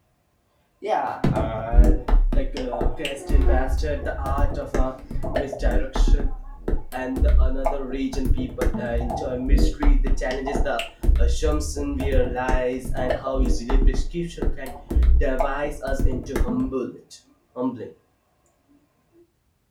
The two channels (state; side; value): identical; both; correlation 1.00